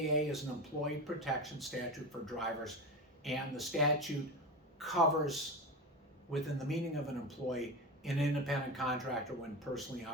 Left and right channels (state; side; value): normal; both; correlation 0.22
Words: is an employee protection statute for drivers, and the statute covers, within the meaning of an employee, an independent contractor when personally